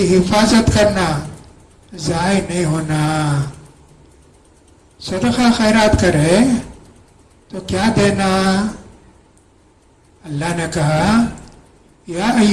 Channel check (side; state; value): both; identical; correlation 1.00